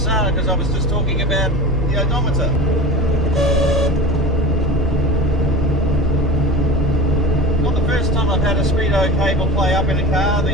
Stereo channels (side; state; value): both; normal; correlation 0.32